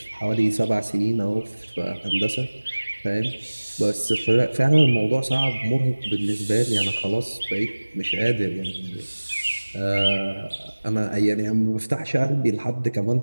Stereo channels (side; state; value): both; inverted; correlation -1.00